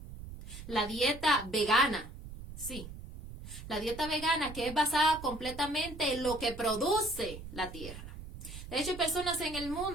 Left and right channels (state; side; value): noise; right; rumble, 12 dB below the sound